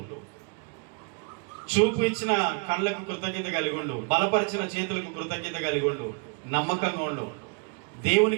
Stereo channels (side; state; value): left; quieter; 35.9 dB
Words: చూపు ఇచ్చిన కళ్ళకు కృతజ్ఞత కలిగి ఉండు, బలపరిచిన చేతులకు కృతజ్ఞత కలిగి ఉండు, నమ్మకంగా ఉండు,